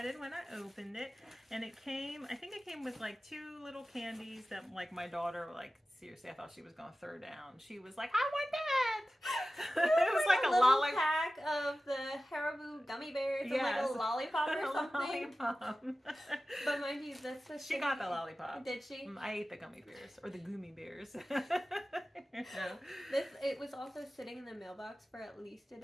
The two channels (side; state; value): both; normal; correlation 0.95